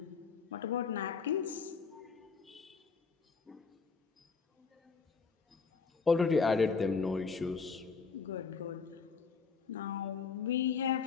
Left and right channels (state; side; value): quieter; right; 5.1 dB